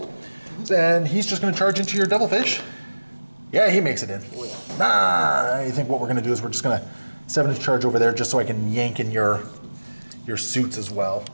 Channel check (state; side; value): inverted; both; correlation -1.00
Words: And he's just going to charge into your Devilfish. Yeah, he makes it in. Oh, yeah. Nah, I think what we're going to do is we're just going to 7-inch charge over there just so I can yank in your suits as well.